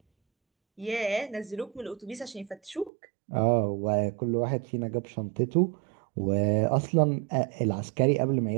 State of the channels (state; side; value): drops out; left; at 2.9 s